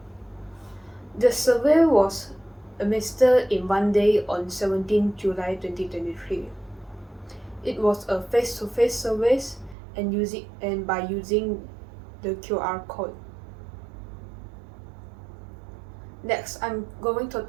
The survey was administered in one day on 17 July 2023. It was a face-to-face survey and by using the QR code. Next, I'm going to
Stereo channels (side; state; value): left; drops out; at 9.8 s